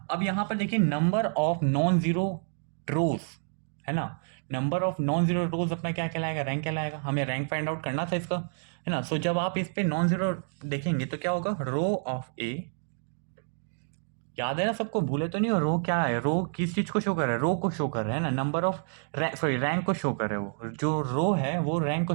अब यहाँ पर देखिए नंबर ऑफ नॉन जीरो रोज, है ना, नंबर ऑफ नॉन जीरो रोज अपना क्या कहलाएगा, रैंक कहलाएगा। हमें रैंक फाइंड आउट करना था इसका, है ना। सो जब आप इस पे नॉन जीरो देखेंगे तो क्या होगा, रो ऑफ ए, याद है ना सबको, भूले तो नहीं हो, रो क्या है, रो किस चीज को शो कर रहा है, रो को शो कर रहा है ना, नंबर ऑफ सॉरी रैंक को शो कर रहा है, वो जो रो है वो रैंक को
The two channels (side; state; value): left; silent; digital silence